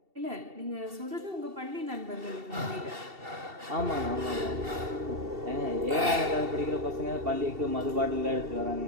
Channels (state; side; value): late; left; 2.7 ms